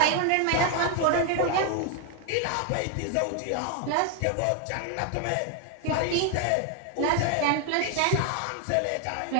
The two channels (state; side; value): different; both; correlation 0.00